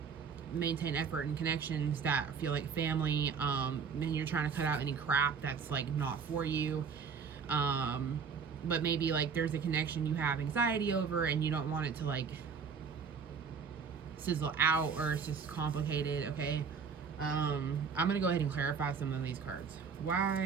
maintain effort and connections that feel like family, and you're trying to cut out any crap that's like not for you. But maybe like there's a connection you have anxiety over and you don't want it to like sizzle out, or it's just complicated, okay? I'm gonna go ahead and clarify some of these cards.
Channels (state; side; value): quieter; left; 6.0 dB